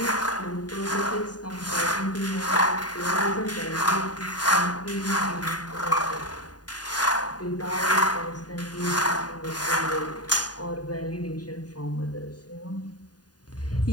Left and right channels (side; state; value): right; late; 0.69 ms